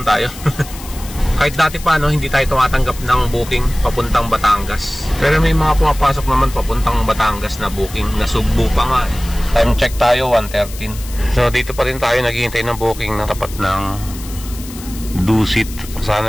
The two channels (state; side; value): noise; left; hiss, 15 dB below the sound